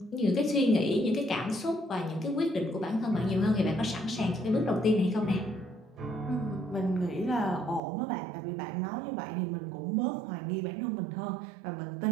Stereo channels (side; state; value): left; drops out; at 7.8 s